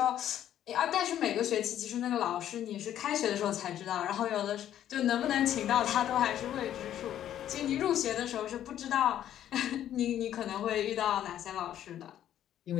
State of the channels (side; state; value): right; quieter; 11.2 dB